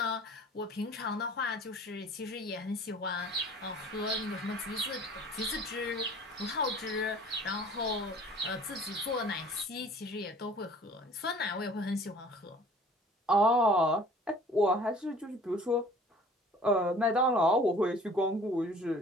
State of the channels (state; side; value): normal; both; correlation 0.49